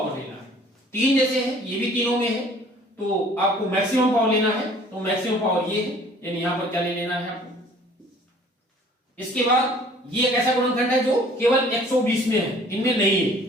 लेना है। 3 जैसे है ये भी तीनों में है तो आपको मैक्सिमम पावर लेना है। तो मैक्सिमम पावर ये है, यानी यहां पर क्या ले लेना है आपको। इसके बाद ये एक ऐसा गुणनखंड है जो केवल 120 में है, इनमें नहीं है,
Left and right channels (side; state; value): both; normal; correlation 0.53